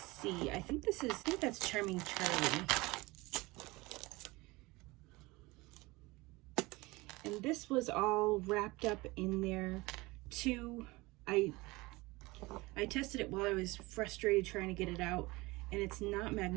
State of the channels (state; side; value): quieter; left; 22.3 dB